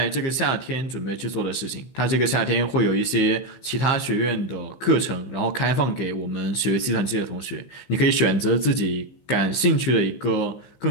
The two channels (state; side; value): late; right; 15 ms